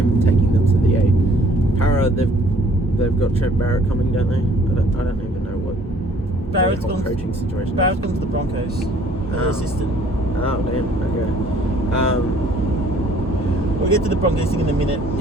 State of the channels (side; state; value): both; normal; correlation 0.58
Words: taking them to the 8. Para, they've got Trent Barrett coming, don't they? I don't even know what Barrett's gone coaching situation. Barrett's gone to the Broncos, the assistant. Oh damn. Okay. We'll get to the Broncos thing in a minute.